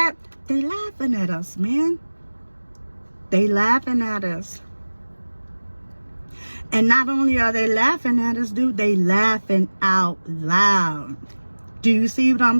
they laughing at us, man. They laughing at us. And not only are they laughing at us, dude, they laughing out loud. Do you see what I'm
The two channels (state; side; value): inverted; both; correlation -1.00